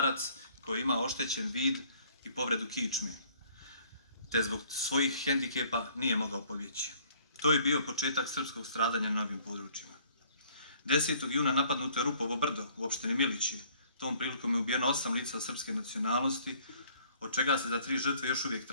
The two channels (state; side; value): inverted; both; correlation -0.59